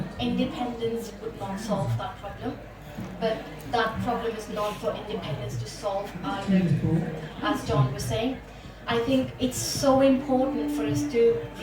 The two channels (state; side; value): identical; both; correlation 1.00